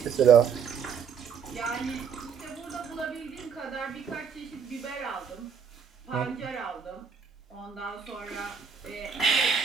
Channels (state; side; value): quieter; left; 6.8 dB